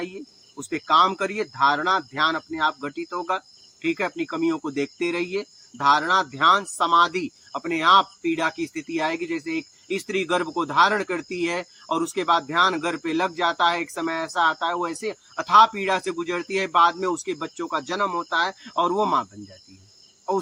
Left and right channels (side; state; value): both; identical; correlation 1.00